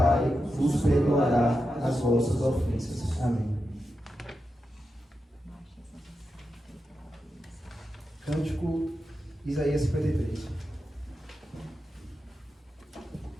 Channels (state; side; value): normal; both; correlation 0.89